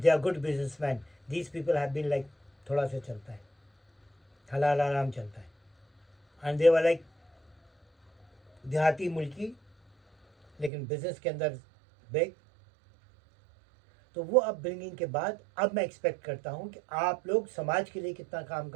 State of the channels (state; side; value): drops out; left; at 10.7 s